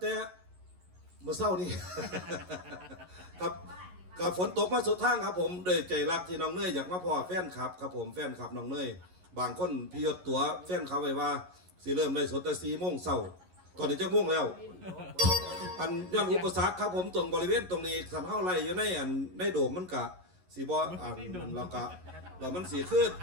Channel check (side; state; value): left; late; 11 ms